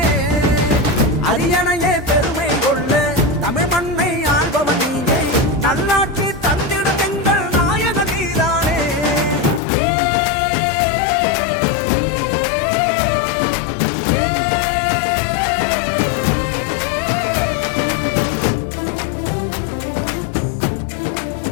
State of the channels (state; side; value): drops out; right; at 9.6 s